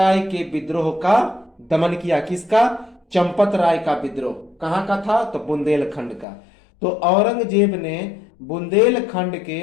के विद्रोह का दमन किया। किसका? चंपत राय का विद्रोह। कहां का था? तो बुंदेलखंड का। तो औरंगजेब ने बुंदेलखंड के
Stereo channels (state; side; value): drops out; right; at 6.2 s